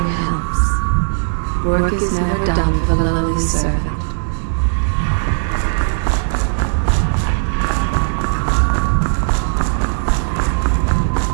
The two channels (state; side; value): silent; left; digital silence